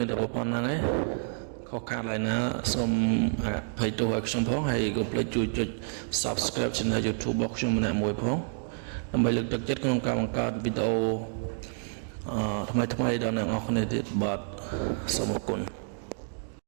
នតែប៉ុណ្្នឹងឯងខុសខាតឡើយណាសូមអភ័យទោសឲ្យខ្ញុំផងហើយកុំភ្លេចជួយចុច Subscribe Channel YouTube របស់ខ្ញុំម្នាក់មួយផងដើម្បីលើកទឹកចិត្តក្នុងការបង្កើតវីដេអូថ្មីៗដល់អ្នកនរគ្នាទៀតបាទសូមអរគុណ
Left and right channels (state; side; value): silent; left; digital silence